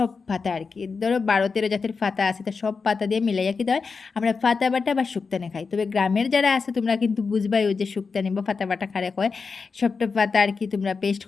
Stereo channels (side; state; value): right; quieter; 4.9 dB